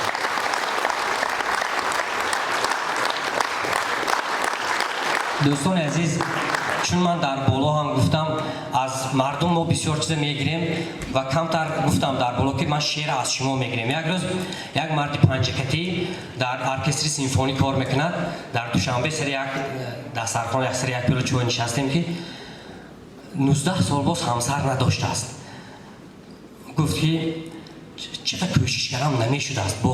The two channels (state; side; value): identical; both; correlation 1.00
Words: دوستان عزیز، چون من در بالا هم گفتم از مردم ما بسیار چیز میگیریم و کمتر گفتم در بالا که من شعر از شما میگیریم. یک روز یک مرد پنجکتی در ارکستر سیمفونی کار میکند. در دوشنبه سر یک دسترخوان یک سر یک پیلو چوب نشستیم که 19 سال باز همسر نداشته است. گفت که چقدر کوشش کردم نمیشده است،